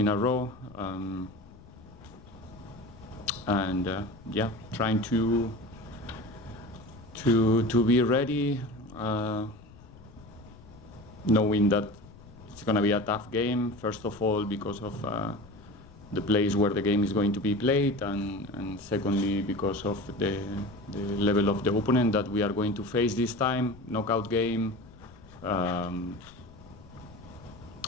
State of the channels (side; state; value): left; noise; rumble, 21 dB below the sound